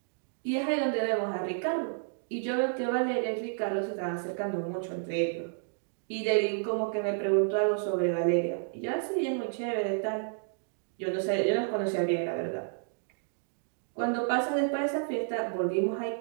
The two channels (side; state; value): left; silent; digital silence